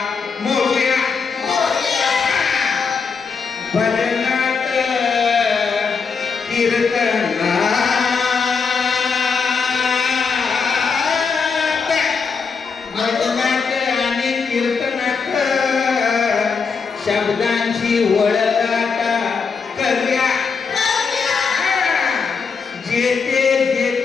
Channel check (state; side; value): quieter; right; 5.4 dB